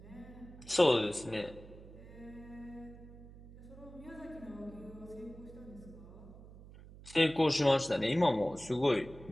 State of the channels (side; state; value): right; noise; hum, 18 dB below the sound